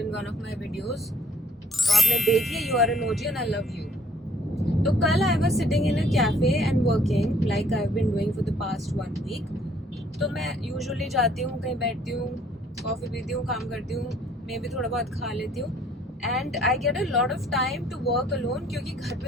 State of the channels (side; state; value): both; normal; correlation 0.60